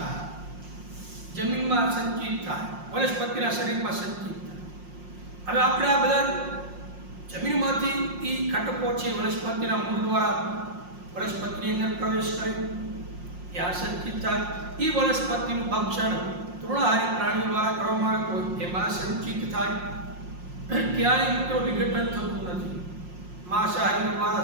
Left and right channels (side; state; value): left; late; 5.6 ms